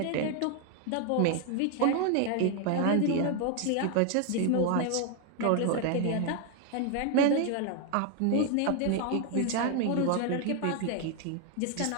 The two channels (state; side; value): different; both; correlation 0.01